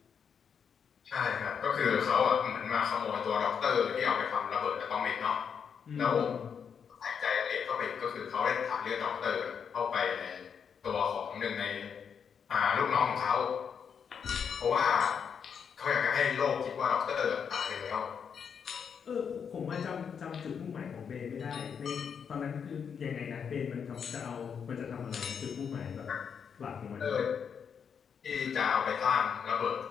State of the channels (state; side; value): quieter; right; 7.0 dB